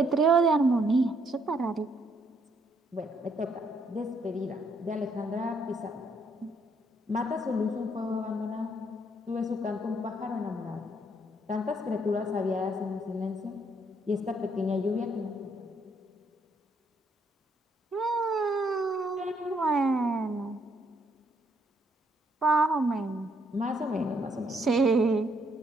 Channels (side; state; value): both; normal; correlation 0.70